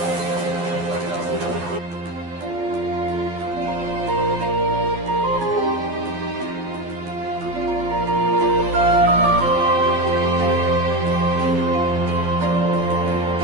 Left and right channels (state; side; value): late; left; 12 ms